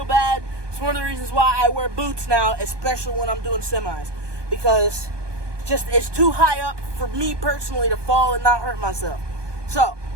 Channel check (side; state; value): left; late; 1.2 ms